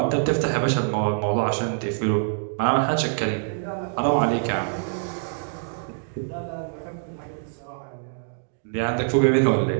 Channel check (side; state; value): left; silent; digital silence